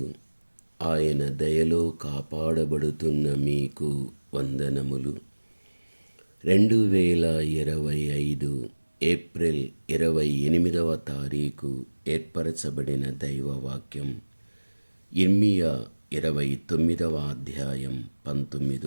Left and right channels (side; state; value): both; inverted; correlation -1.00